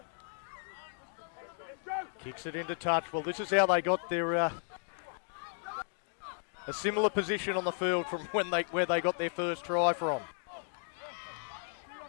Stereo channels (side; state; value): right; silent; 55 dB below the other